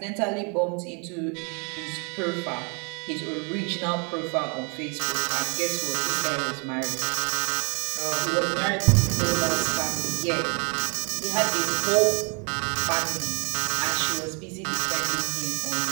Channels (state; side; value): quieter; left; 35.3 dB